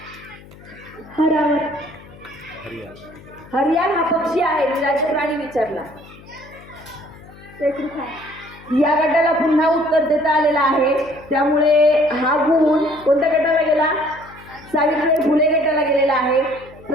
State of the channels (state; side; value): noise; left; hum, 21 dB below the sound